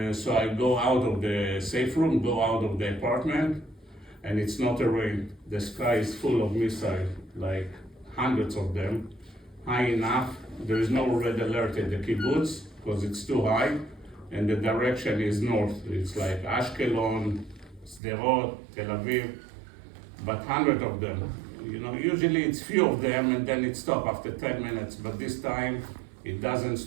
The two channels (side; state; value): left; drops out; at 18.0 s